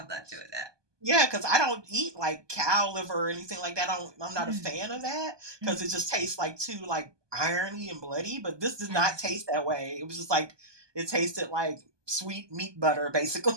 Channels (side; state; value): left; late; 1.2 ms